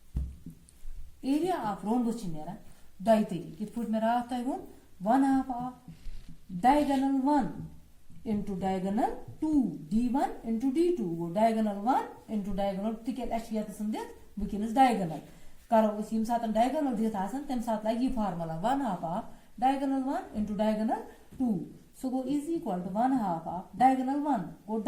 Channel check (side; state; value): both; identical; correlation 1.00